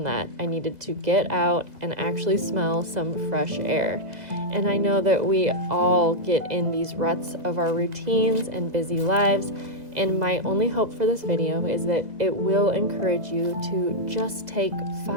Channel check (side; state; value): left; late; 2.0 ms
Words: that. I needed to get out and actually smell some fresh air. And I know that we all get in these ruts of our routines and busy lives. And my only hope for this video is that it will encourage you to just take